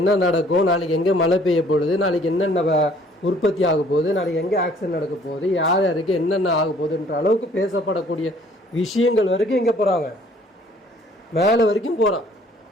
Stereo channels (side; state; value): both; normal; correlation 0.58